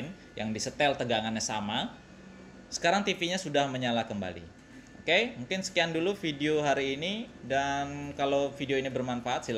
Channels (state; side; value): identical; both; correlation 1.00